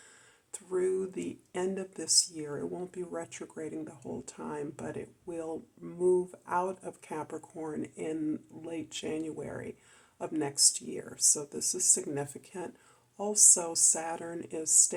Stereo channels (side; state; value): both; identical; correlation 1.00